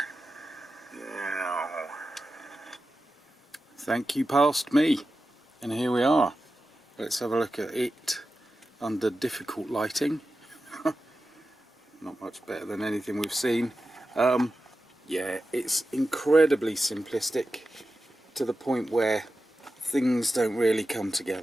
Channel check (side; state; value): both; normal; correlation 0.93